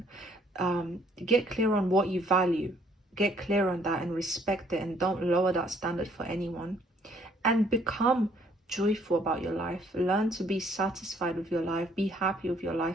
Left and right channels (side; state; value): both; normal; correlation 0.63